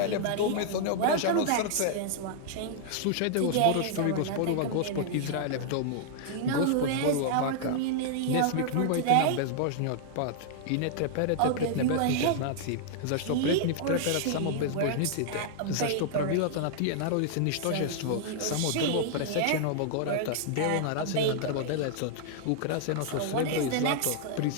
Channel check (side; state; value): both; different; correlation -0.01